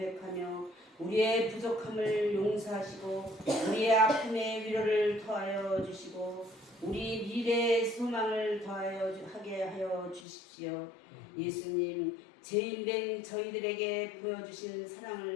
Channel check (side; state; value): right; drops out; at 10.2 s